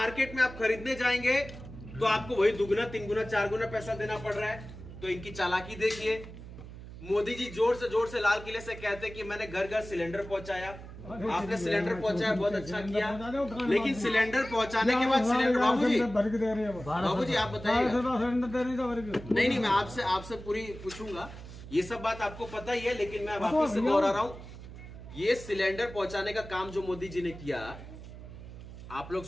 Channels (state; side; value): noise; right; hum, 14 dB below the sound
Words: में आप खरीदने जाएंगे तो आपको वही 2 गुना 3 गुना 4 गुना पैसा देना पड़ रहा है। तो इनकी चालाकी देखिए। मोदी जी जोर से लाल किले से कहते कि मैंने घर घर सिलेंडर पहुंचाया। आपने सिलेंडर पहुंचाया, बहुत अच्छा किया, लेकिन सिलेंडर पहुंचाने के बाद सिलेंडर बाबूजी आप बताइए। नहीं, मैं आपसे पूरी पूछूंगा, ये सब बात आपको पता ही है, लेकिन मैं वापस से दोहरा रहा हूँ। ये सिलेंडर पहुंचाने का काम जो मोदी जी ने किया, आप लोग